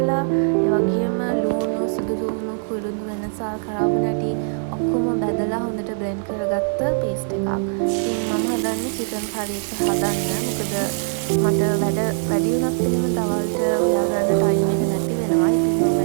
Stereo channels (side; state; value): left; silent; 64 dB below the other